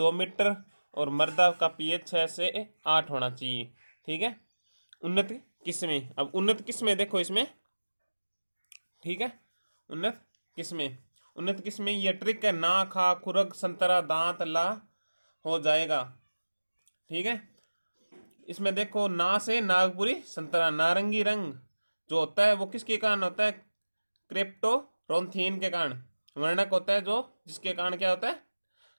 मीटर और मृदा का pH 6 से 8 होना चाहिए। ठीक है, उन्नत किस्में। अब उन्नत किस्में देखो इसमें। ठीक है, उन्नत किस्में ये ट्रिक है, ना खा खुरग संतरा दांत ला हो जाएगा। ठीक है, इसमें देखो ना से नागपुरी संतरा, नारंगी रंग जो होता है वो किसके कारण होता है, क्रिप्टोरोंथीन के कारण। वर्णक होता है जो जिसके कारण क्या होता है,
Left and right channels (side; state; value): both; inverted; correlation -1.00